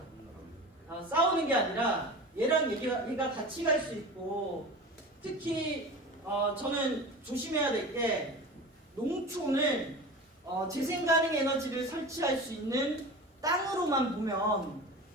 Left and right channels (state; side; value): normal; both; correlation 0.33